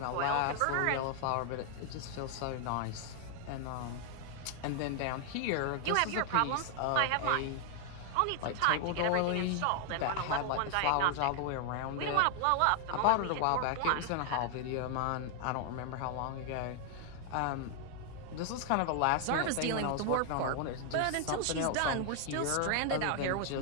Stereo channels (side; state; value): both; different; correlation 0.00